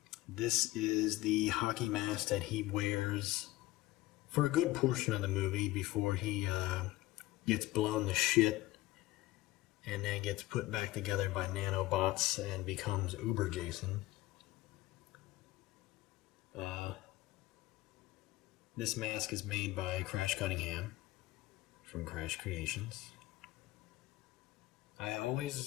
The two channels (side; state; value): right; quieter; 18.0 dB